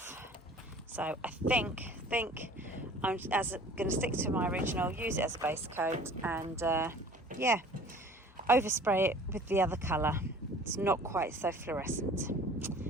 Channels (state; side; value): normal; both; correlation 0.48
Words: So I think I'm going to stick to my original, use it as a base coat, and yeah, overspray it with the other colour. It's not quite so fluorescent.